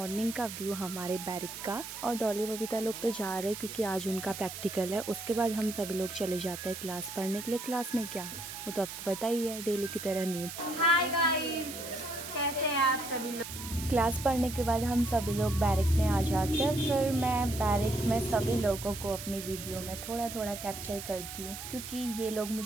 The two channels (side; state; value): right; noise; hiss, 9 dB below the sound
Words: का व्यू हमारे बैरिक का और डॉली बबीता लोग तो जा रहे हैं क्योंकि आज उनका प्रैक्टिकल है। उसके बाद हम सभी लोग चले जाते हैं क्लास पढ़ने के लिए। क्लास में क्या, वो तो आपको पता ही है, डेली की तरह नींद। हाय गाइस, कैसे हैं आप सभी लोग। क्लास पढ़ने के बाद हम सभी लोग बैरिक में आ जाते हैं। फिर मैं बैरिक में सभी लोगों को अपनी वीडियो में थोड़ा थोड़ा कैप्चर करती हूँ क्योंकि ये लोग